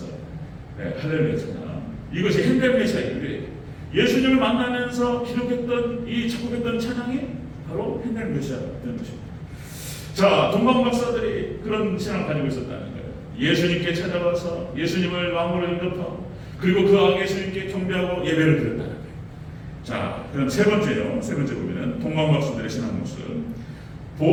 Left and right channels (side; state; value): both; identical; correlation 1.00